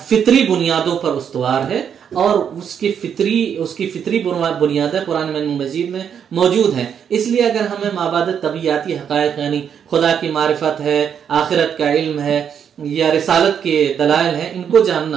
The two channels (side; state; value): left; quieter; 8.0 dB